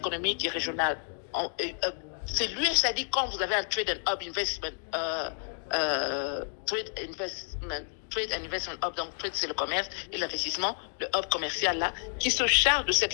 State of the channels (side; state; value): right; silent; digital silence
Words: et régionale. C'est l'USAID quand vous avez un Trade and Hub Investment Trade and Investment Hub, donc Trade c'est le commerce et l'investissement, le hub commercial là, qui se charge de cette